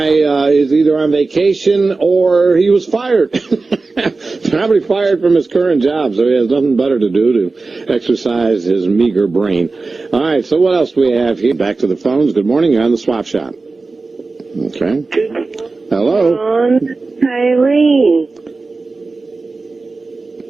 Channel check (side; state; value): left; quieter; 3.8 dB